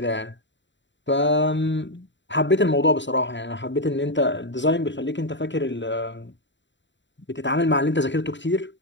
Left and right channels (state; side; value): late; right; 0.53 ms